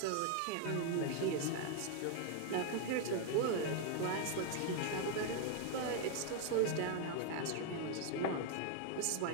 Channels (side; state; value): both; different; correlation 0.01